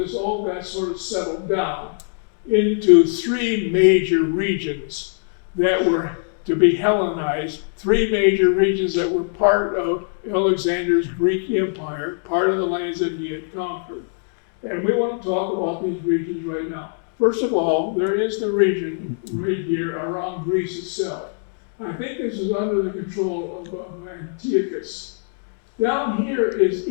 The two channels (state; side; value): silent; right; digital silence